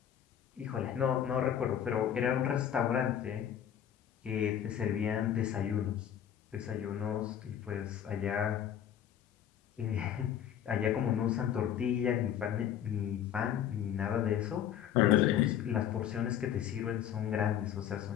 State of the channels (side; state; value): right; quieter; 9.9 dB